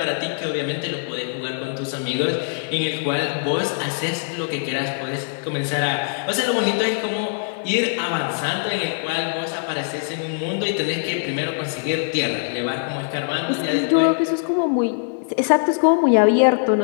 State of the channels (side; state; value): right; silent; 64 dB below the other